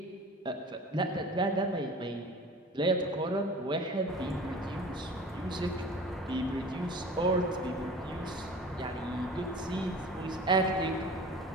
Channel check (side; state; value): both; normal; correlation 0.40